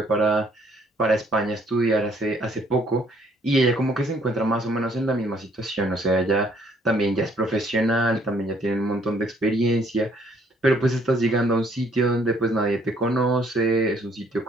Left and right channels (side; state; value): both; normal; correlation 0.64